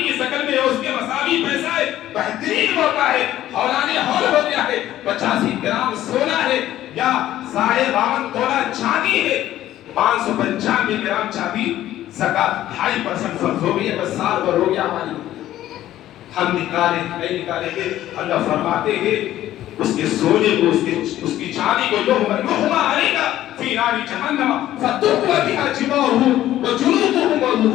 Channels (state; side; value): quieter; right; 13.4 dB